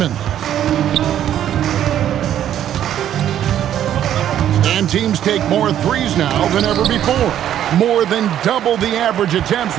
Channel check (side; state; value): left; quieter; 10.9 dB